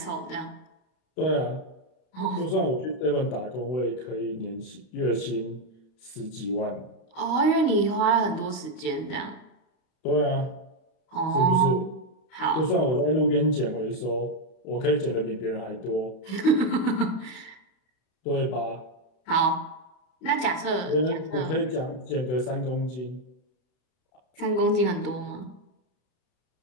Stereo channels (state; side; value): late; right; 31 ms